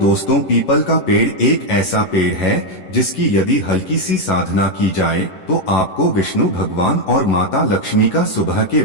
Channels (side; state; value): right; late; 11 ms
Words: पीपल का पेड़ एक ऐसा पेड़ है जिसकी यदि हल्की सी साधना की जाए तो आपको विष्णु भगवान और माता लक्ष्मी का सुबह के